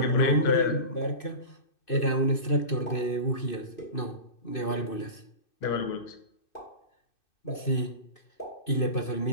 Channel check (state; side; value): late; right; 2.6 ms